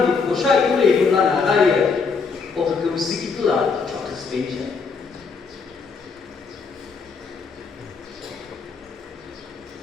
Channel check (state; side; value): quieter; right; 5.0 dB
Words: 고샤이를 불라 나가에 어그 스키플라 초크 스페이스